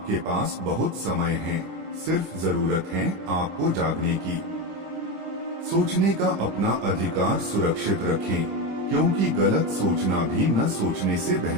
पास बहुत समय है। सिर्फ जरूरत है आपको जागने की। सोचने का अपना अधिकार सुरक्षित रखें, क्योंकि गलत सोचना भी न सोचने से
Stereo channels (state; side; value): late; left; 26 ms